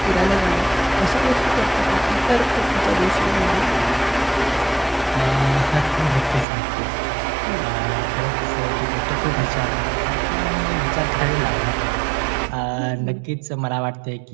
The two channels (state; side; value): drops out; left; at 6.5 s